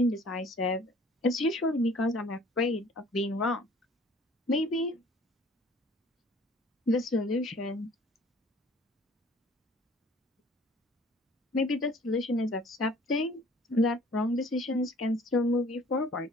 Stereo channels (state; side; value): normal; both; correlation 0.53